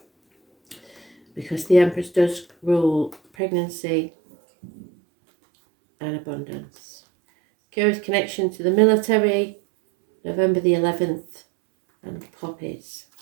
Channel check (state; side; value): drops out; left; at 3.2 s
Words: Because the Empress does rule pregnancy and abundance. Curious connection to the military, November the 11th, and poppies.